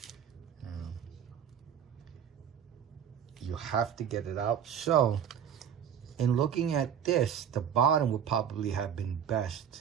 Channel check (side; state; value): left; quieter; 8.6 dB